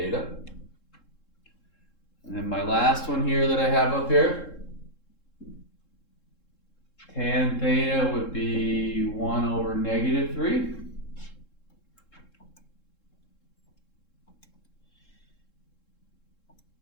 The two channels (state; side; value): late; right; 3.7 ms